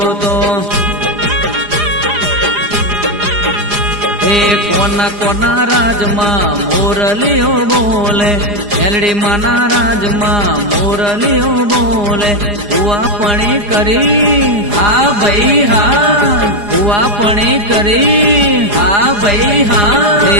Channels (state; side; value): late; left; 4.9 ms